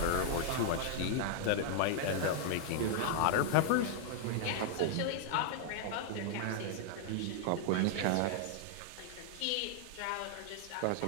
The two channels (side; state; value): both; different; correlation -0.01